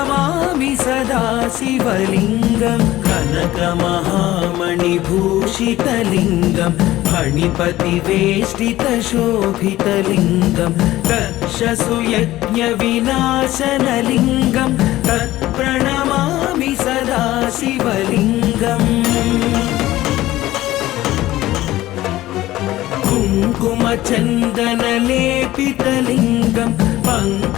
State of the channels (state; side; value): quieter; right; 15.9 dB